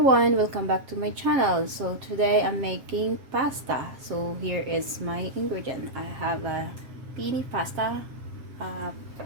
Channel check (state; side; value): late; left; 7.5 ms